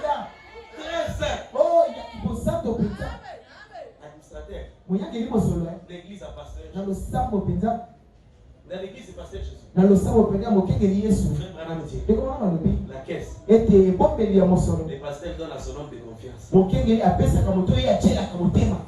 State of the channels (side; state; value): both; identical; correlation 1.00